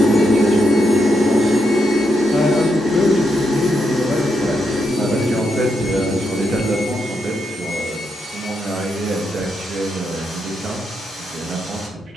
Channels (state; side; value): normal; both; correlation 0.81